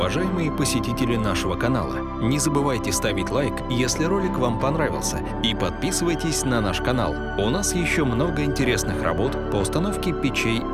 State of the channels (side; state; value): both; identical; correlation 1.00